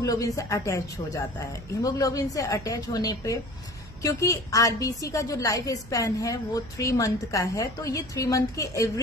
से अटैच हो जाता है। हीमोग्लोबिन से अटैच होने पे क्योंकि आरबीसी का जो लाइफ स्पैन है वो 3 मंथ का है तो ये 3 मंथ की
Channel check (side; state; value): right; noise; hum, 18 dB below the sound